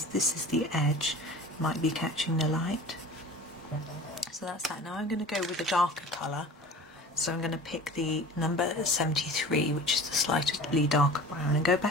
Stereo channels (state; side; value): normal; both; correlation 0.40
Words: this is the edge, might be catching the light. So that's that. Now I'm going to go with a darker colour, so I'm going to pick the number 73, which is the slightly darker brown, and go